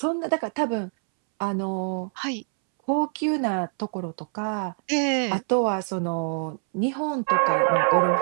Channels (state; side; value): silent; left; 62 dB below the other